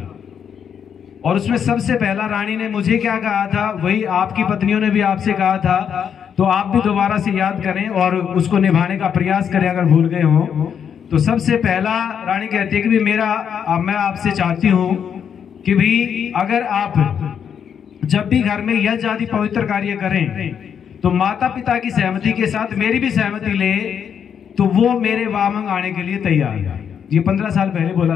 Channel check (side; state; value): right; quieter; 7.8 dB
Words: और उसमें सबसे पहला रानी ने मुझे क्या कहा था, वही आपकी पत्नियों ने भी आपसे कहा था, तो आप भी दोबारा से याद करें और उसको निभाने का प्रयास करें अगर भूल गए हो। तो सबसे पहला रानी कहती है कि भी मैं आपसे चाहती हूं कि भी अगर आप जब भी घर में यज्ञ आदि पवित्र कार्य करें तो माता पिता की सहमति के साथ मेरी भी सहमति ले, तो वो मेरे वामंग आने के लिए तैयार है। ये 15 साल पहले